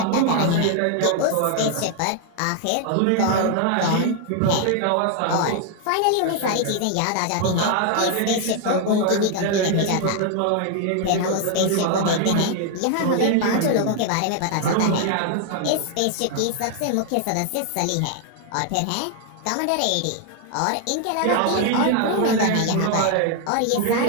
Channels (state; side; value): different; both; correlation 0.00